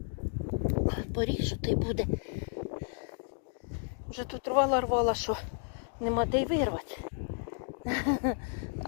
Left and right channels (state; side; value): silent; right; 56 dB below the other